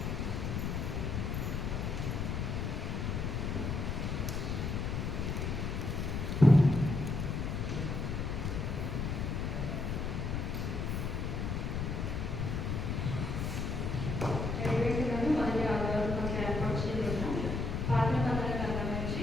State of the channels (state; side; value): noise; left; rumble, 1 dB below the sound